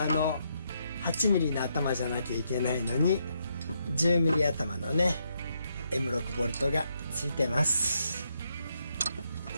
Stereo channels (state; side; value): inverted; both; correlation -0.77